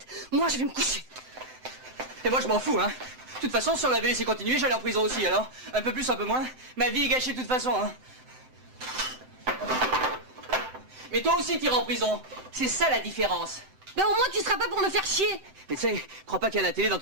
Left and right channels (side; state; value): left; late; 7.8 ms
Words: Moi, je vais me coucher. Et moi, je m'en fous, hein. De toute façon, si on avait laissé continuer, j'allais en prison aussi, alors. Un peu plus, un peu moins. Ma vie est gâchée de toute façon, hein. Mais toi aussi, t'iras en prison. C'est ça la différence. Ben au moins, tu seras pas pour me faire chier. Mais tu sais, crois pas qu'il y a la télé dans